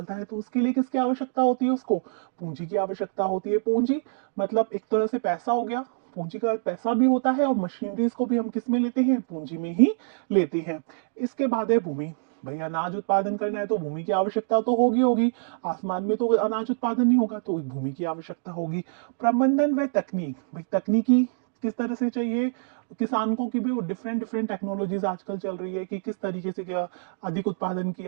है, तो उसके लिए किसकी आवश्यकता होती है, उसको पूंजी की आवश्यकता होती है। पूंजी मतलब एक तरह से पैसा हो गया, पूंजी का पैसा भी होता है, और मशीनरीज को भी हम किस में लेते हैं, पूंजी में ही लेते हैं। इसके बाद है भूमि। भाई अनाज उत्पादन करना है तो भूमि की आवश्यकता तो होगी होगी, आसमान में तो अनाज उत्पादन नहीं होगा, तो भूमि की आवश्यकता होगी। प्रबंधन व तकनीक, भाई तकनीकी किस तरह से चाहिए किसान को, कि भी वो डिफरेंट डिफरेंट टेक्नोलॉजीज आजकल चल रही है कि किस तरीके से क्या अधिक उत्पादन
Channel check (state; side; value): silent; left; digital silence